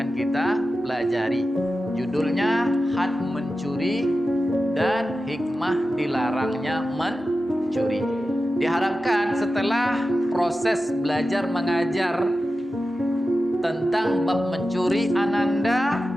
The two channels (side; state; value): both; normal; correlation 0.93